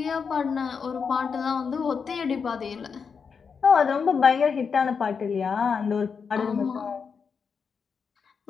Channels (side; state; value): right; quieter; 5.9 dB